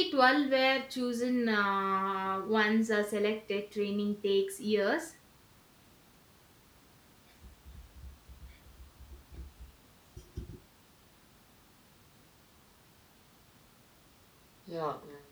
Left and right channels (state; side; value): identical; both; correlation 1.00